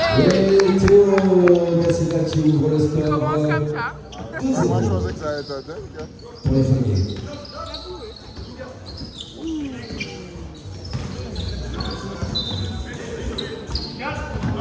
Et Théo Gassina qui ouvre le score. Commence comme ça. Moi, je pensais que ça allait être dingue. Pour les Flingués.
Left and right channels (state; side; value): identical; both; correlation 1.00